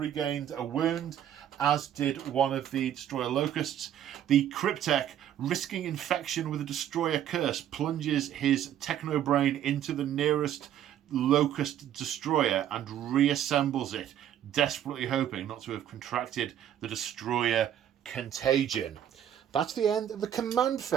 a wound, as did one of the Destroyer Locusts. The Cryptek, risking infection with a Destroyer Curse, plunges his Technobrain into the nearest Locust Destroyer and reassembles it, desperately hoping not to have contracted the Destroyer Contagion. That's the end of the command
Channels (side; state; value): left; quieter; 10.5 dB